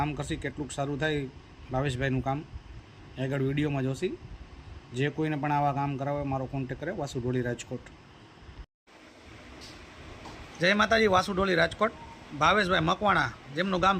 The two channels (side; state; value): both; identical; correlation 1.00